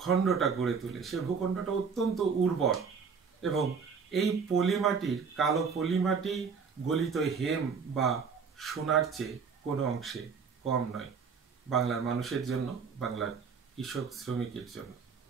গড়ে তোলে, সে ভূখণ্ডটা অত্যন্ত উর্বর এবং এই পলিমাটির, কালো পলিমাটি গলিত হেম বা সোনার চেয়ে কোনো অংশে কম নয় বাংলার মানুষের জন্য, বাংলার কৃষক শ্রমিকের জন্য।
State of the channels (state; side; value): quieter; left; 5.8 dB